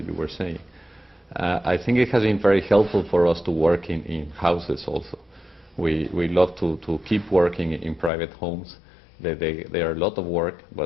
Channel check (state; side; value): drops out; right; at 8.1 s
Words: you were saying. I think it has been very helpful for us to work in houses also. We love to keep working in private homes. They are a lot of work,